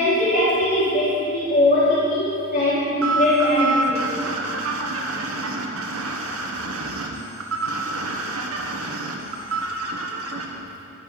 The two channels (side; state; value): both; normal; correlation 0.28